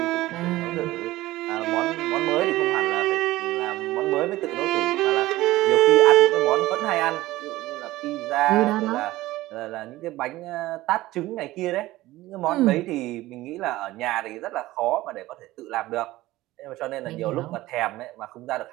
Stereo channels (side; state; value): left; quieter; 17.3 dB